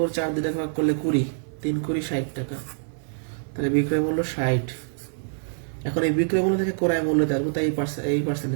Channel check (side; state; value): left; silent; 61 dB below the other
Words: 4 দিয়ে ভাগ করলে 20, 3 20 60 টাকা। তাহলে বিক্রয় মূল্য 60। এখন এই বিক্রয় মূল্য থেকে ক্রয় মূল্য আসবো, তাই এই